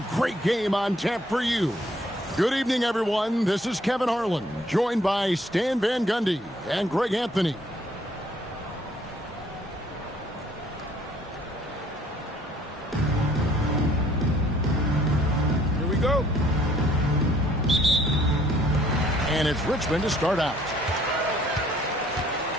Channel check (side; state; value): both; normal; correlation 0.61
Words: great game on tap for you. Good evening, everyone. This is Kevin Harlan, joined by Stan Van Gundy and Greg Anthony. Here we go. And it's Richmond to start out.